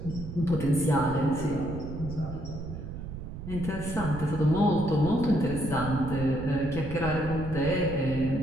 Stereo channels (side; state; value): right; noise; rumble, 9 dB below the sound